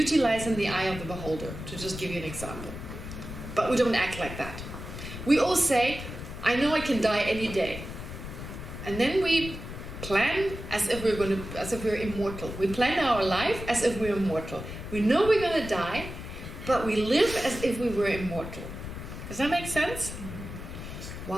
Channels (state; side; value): noise; left; rumble, 9 dB below the sound